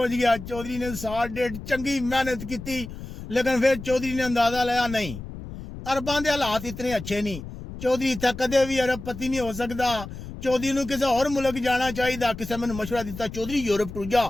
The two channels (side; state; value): left; noise; rumble, 11 dB below the sound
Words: ਗਿਆ। ਚੌਧਰੀ ਨੇ ਸਾਲ ਡੇਢ ਚੰਗੀ ਮਿਹਨਤ ਕੀਤੀ, ਲੇਕਿਨ ਫਿਰ ਚੌਧਰੀ ਨੇ ਅੰਦਾਜ਼ਾ ਲਾਇਆ ਨਹੀਂ, ਅਰਬਾਂ ਦੇ ਹਾਲਾਤ ਇਤਨੇ ਅੱਛੇ ਨਹੀਂ। ਚੌਧਰੀ ਇੱਥੇ ਕਦੇ ਵੀ ਅਰਬਪਤੀ ਨਹੀਂ ਹੋ ਸਕਦਾ। ਚੌਧਰੀ ਨੂੰ ਕਿਸੇ ਹੋਰ ਮੁਲਕ ਜਾਣਾ ਚਾਹੀਦਾ। ਕਿਸੇ ਮੈਨੂੰ ਮਸ਼ਵਰਾ ਦਿੱਤਾ ਚੌਧਰੀ ਯੂਰਪ ਟੁਰ